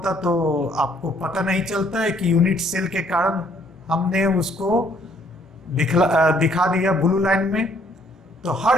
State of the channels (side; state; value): both; normal; correlation 0.64